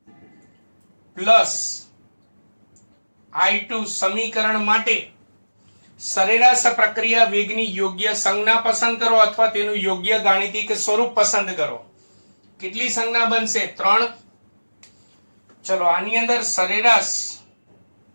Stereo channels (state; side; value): inverted; both; correlation -1.00